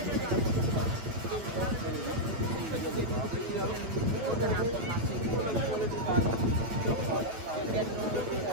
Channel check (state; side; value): late; left; 8.9 ms